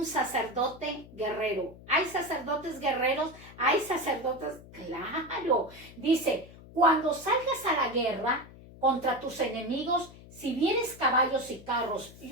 sacerdote guerrero. ¿Hay sacerdotes guerreros? ¿Hay sacerdotes? Claro. Dice, cuando salgas a la guerra contra tus enemigos, si vienes caballos y carros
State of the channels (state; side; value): noise; left; hum, 19 dB below the sound